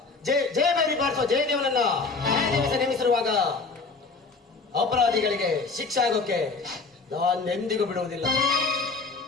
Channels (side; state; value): right; quieter; 4.2 dB